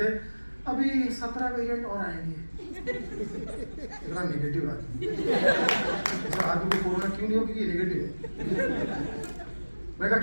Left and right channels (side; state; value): both; inverted; correlation -1.00